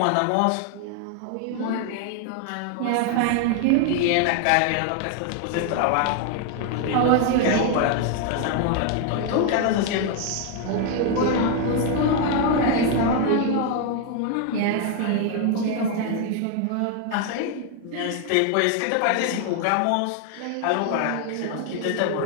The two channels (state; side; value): different; both; correlation 0.01